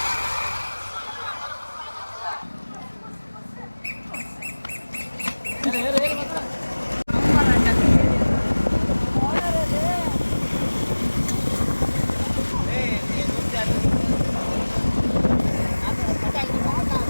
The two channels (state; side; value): inverted; both; correlation -1.00